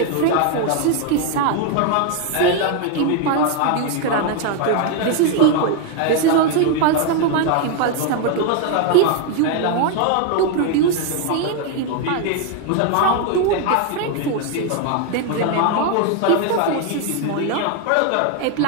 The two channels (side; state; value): both; different; correlation 0.01